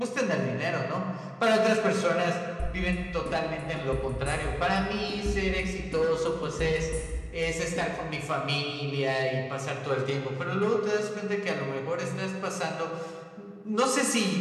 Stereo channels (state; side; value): identical; both; correlation 1.00